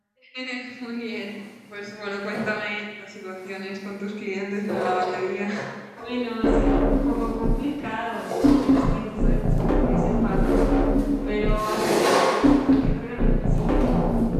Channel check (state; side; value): identical; both; correlation 1.00